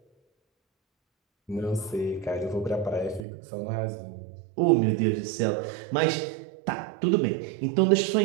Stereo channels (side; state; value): left; drops out; at 3.2 s